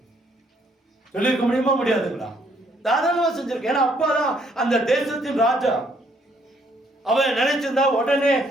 சொல்லியிருக்க முடியுமா? முடியாதுங்களா? தாராளமா செஞ்சிருக்க. ஏன்னா அப்பாதான் அந்த தேசத்தின் ராஜா. அவன் நினைச்சிருந்தா உடனே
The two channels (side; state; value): both; normal; correlation 0.68